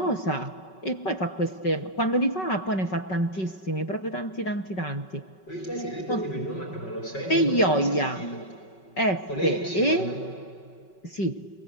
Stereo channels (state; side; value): late; right; 5.3 ms